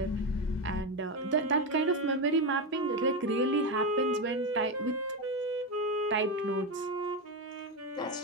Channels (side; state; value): both; normal; correlation 0.12